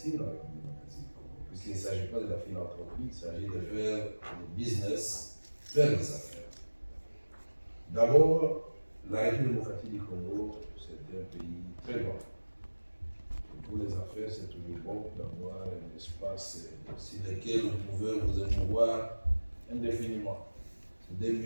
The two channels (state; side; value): inverted; both; correlation -1.00